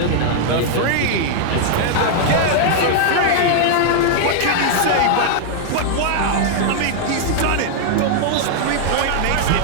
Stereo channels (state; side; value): different; both; correlation 0.00